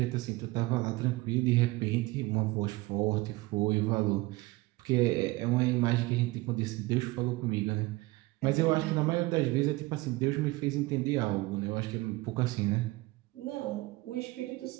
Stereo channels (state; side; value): quieter; left; 21.2 dB